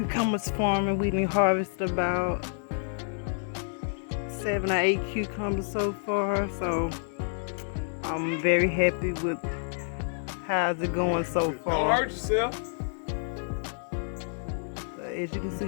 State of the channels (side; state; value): right; silent; digital silence